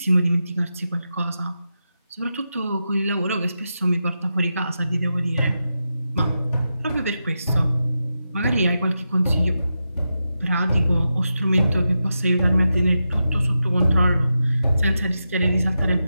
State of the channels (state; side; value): inverted; both; correlation -0.89